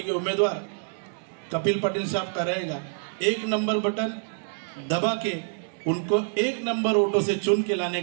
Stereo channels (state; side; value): silent; left; digital silence